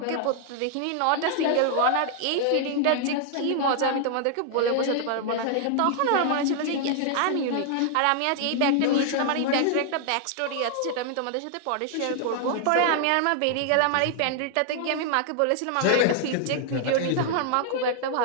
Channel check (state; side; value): different; both; correlation 0.00